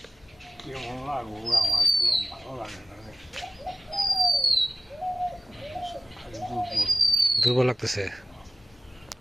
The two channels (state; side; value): normal; both; correlation 0.95